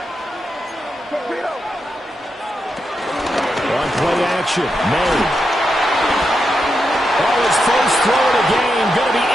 On play action, May. Oh, his first throw of the game going to be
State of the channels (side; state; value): both; normal; correlation 0.86